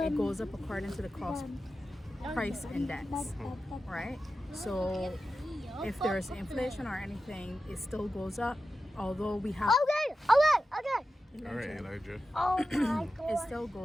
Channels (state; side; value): normal; both; correlation 0.92